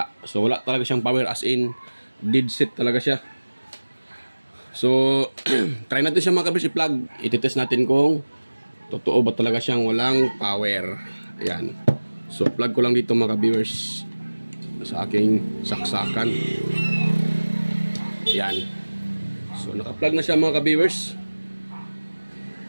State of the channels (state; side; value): inverted; both; correlation -1.00